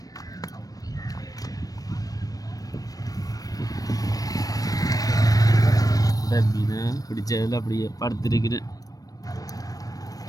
மீனை பிடிச்சதில் அப்படியே படுத்திருக்கிறேன்.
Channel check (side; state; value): right; late; 0.18 ms